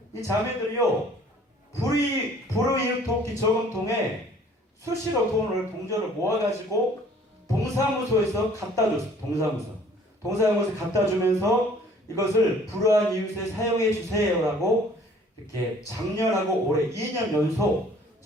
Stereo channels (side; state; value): both; normal; correlation 0.55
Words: 이 자매들이요 불우이웃돕기 저금통에 수시로 돈을 동전을 모아가지고 동사무소에서 갖다 줬어요. 동사무소에 갖다 주면서 이것을 불우한 이웃에 사용해 주세요라고 이렇게 작년하고 올해 2년 연속